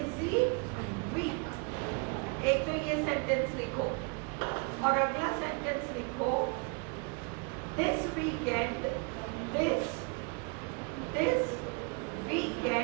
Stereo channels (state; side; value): quieter; left; 34.7 dB